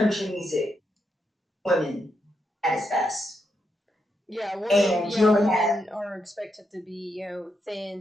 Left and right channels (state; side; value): normal; both; correlation 0.82